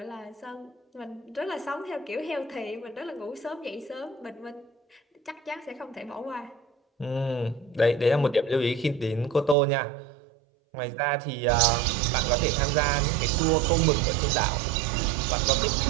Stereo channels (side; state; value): left; drops out; at 9.6 s